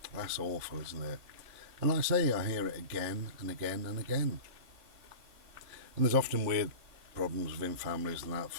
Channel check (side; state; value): left; late; 3.6 ms